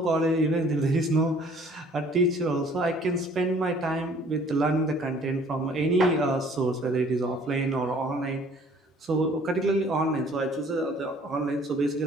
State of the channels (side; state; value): both; normal; correlation 0.55